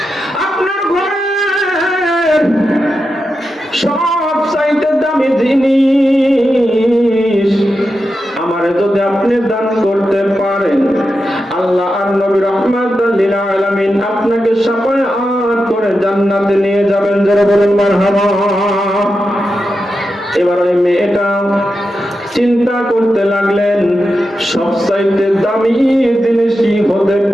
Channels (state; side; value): normal; both; correlation 0.89